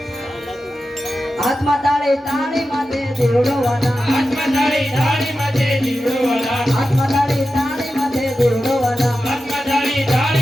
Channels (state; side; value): normal; both; correlation 0.92